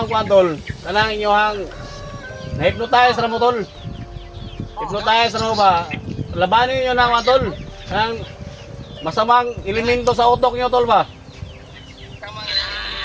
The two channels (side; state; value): both; identical; correlation 1.00